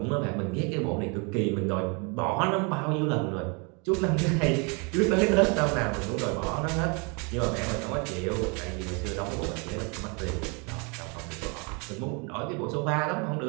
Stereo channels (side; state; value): left; quieter; 32.8 dB